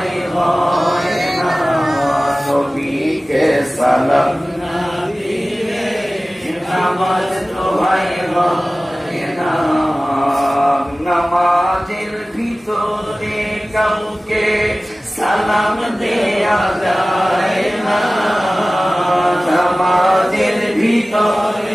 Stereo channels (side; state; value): both; normal; correlation 0.97